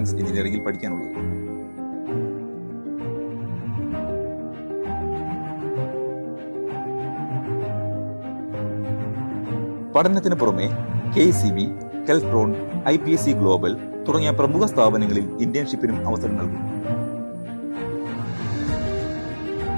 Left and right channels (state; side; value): inverted; both; correlation -1.00